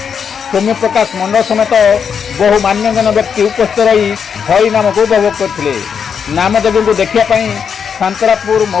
ସୌମ୍ୟ ପ୍ରକାଶ ମଣ୍ଡଳ ସମେତ ବହୁ ମାନ୍ୟଗଣ୍ୟ ବ୍ୟକ୍ତି ଉପସ୍ଥିତ ରହି ହରିନାମକୁ ଉପଭୋଗ କରିଥିଲେ। ନାମଯଜ୍ଞକୁ ଦେଖିବା ପାଇଁ ସାନ୍ତରାପୁର,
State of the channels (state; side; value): quieter; right; 6.9 dB